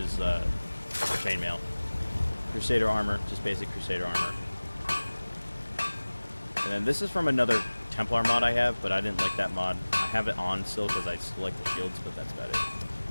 chainmail. Crusader armor, just basic Crusader armor. And then this is from another Templar mod I have, but I didn't like that mod. I have it on still because I still like the shields, but that's about it.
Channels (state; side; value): inverted; both; correlation -1.00